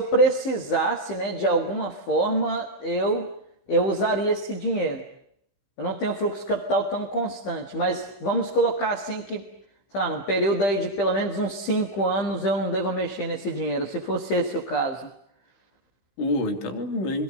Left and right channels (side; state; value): right; late; 16 ms